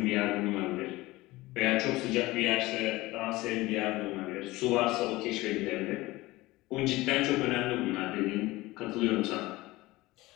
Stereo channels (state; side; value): quieter; right; 19.6 dB